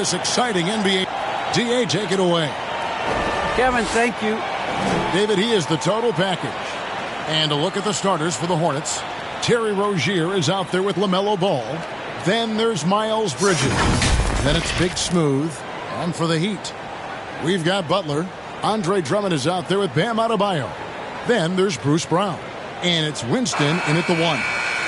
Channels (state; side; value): identical; both; correlation 1.00